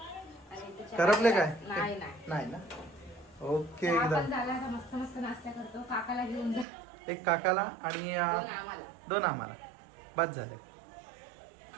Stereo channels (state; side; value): drops out; left; at 6.7 s